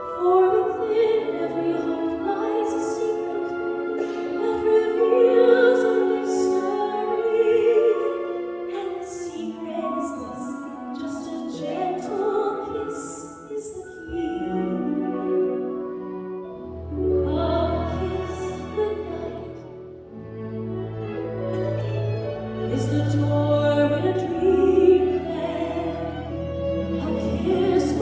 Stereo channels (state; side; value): identical; both; correlation 1.00